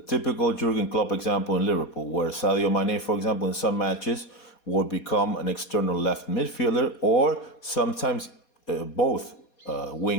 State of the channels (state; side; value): late; right; 4.2 ms